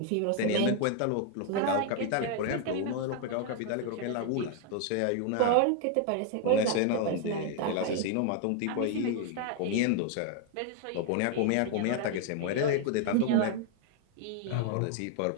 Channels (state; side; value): different; both; correlation 0.00